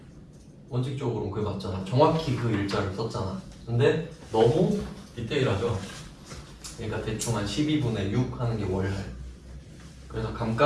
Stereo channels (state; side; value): identical; both; correlation 1.00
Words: 원칙적으로는 그게 맞잖아. 정확히 그 일자를 썼잖아. 근데 너무 디테일하죠? 그러니까 대충 한 12분의 6 하는 게 월할. 그래서